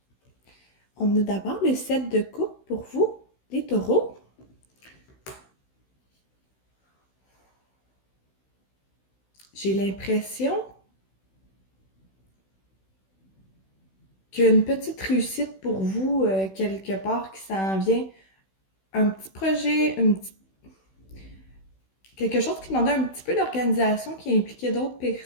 On a d'abord le set de coupe pour vous, les taureaux. J'ai l'impression qu'il y a une petite réussite pour vous quelque part qui s'en vient. Un petit projet, quelque chose qui demandait un petit peu d'organisation, qui impliquait d'autres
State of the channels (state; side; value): late; right; 16 ms